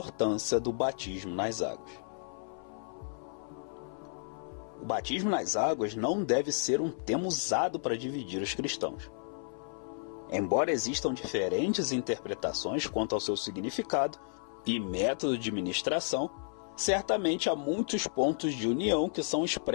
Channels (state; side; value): silent; right; 56 dB below the other